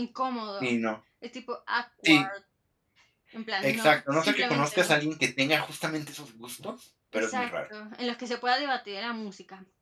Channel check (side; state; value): both; identical; correlation 1.00